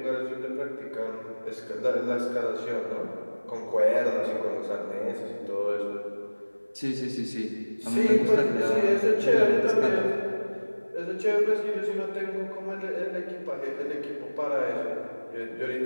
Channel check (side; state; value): both; inverted; correlation -1.00